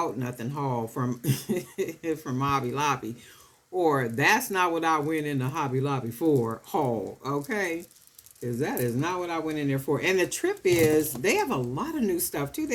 nothing haul from from Hobby Lobby, or that's not what I went into Hobby Lobby for haul. Okay, because that is not what I went in there for. And the trip is they have a lot of new stuff too. They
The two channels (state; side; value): identical; both; correlation 1.00